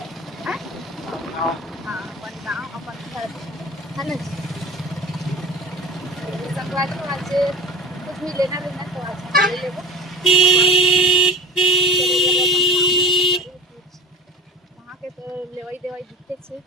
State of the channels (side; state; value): both; normal; correlation 0.34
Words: हां अपन गांव अपन घर है ना जी। संगवारी को आज कुछ भी लेना तो आज ले लेबो वहाँ के तो लेवाई देवाई दिखते छे।